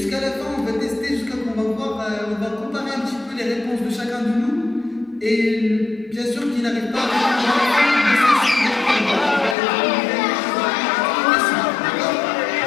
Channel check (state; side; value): drops out; right; at 9.6 s